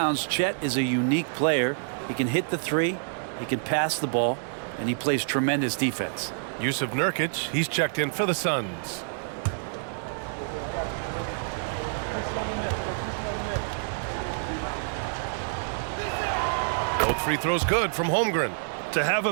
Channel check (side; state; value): left; silent; 59 dB below the other